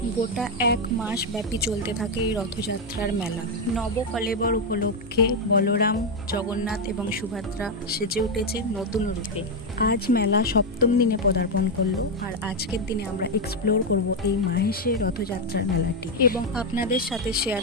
গোটা 1 মাস ব্যাপী চলতে থাকে এই রথযাত্রার মেলা। নবকলেবর উপলক্ষে বলরাম, জগন্নাথ এবং সুভদ্রা সেজে উঠেছে নতুন রূপে। আজ মেলা 7ম দিনে পদার্পণ করলো, আর আজকের দিনে আমরা এক্সপ্লোর করব এই মাহেশের রথযাত্রার মেলাটি এবং আপনাদের সাথে শেয়ার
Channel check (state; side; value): normal; both; correlation 0.04